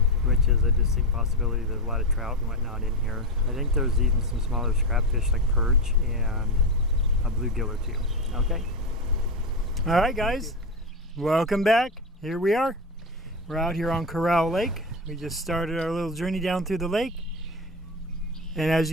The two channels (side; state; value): both; normal; correlation 0.17